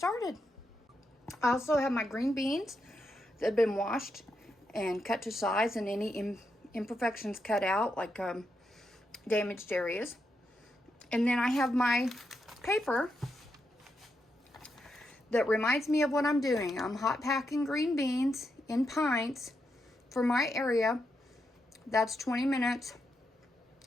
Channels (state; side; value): normal; both; correlation 0.83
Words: I also have my green beans that have been washed and cut to size, and any imperfections cut out, like damaged areas. And then I have my paper that reminds me of what I'm doing. I'm hot packing green beans in pints for my area. That's 20 minutes.